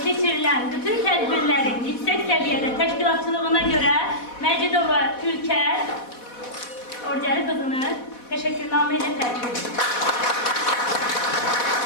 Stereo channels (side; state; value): right; late; 4.1 ms